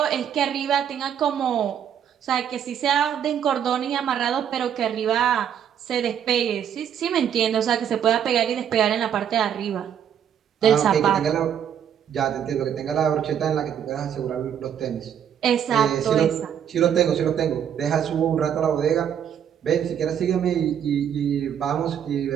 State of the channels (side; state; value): left; quieter; 9.0 dB